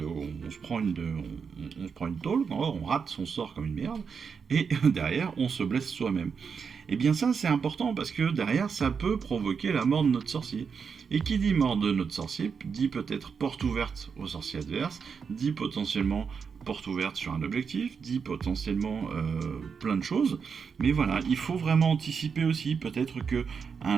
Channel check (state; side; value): quieter; left; 6.0 dB